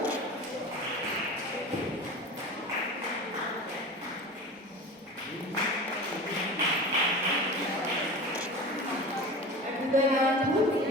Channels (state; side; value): normal; both; correlation 0.33